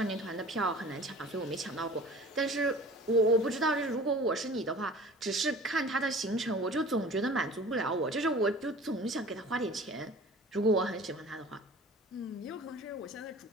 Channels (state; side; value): normal; both; correlation 0.43